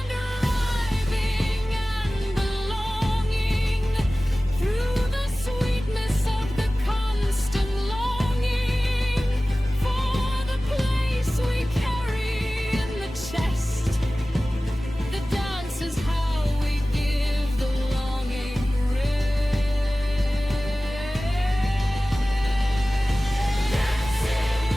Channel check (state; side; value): normal; both; correlation 0.97